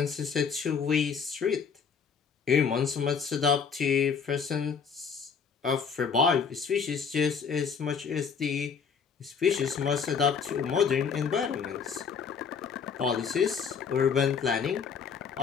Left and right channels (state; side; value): quieter; right; 6.3 dB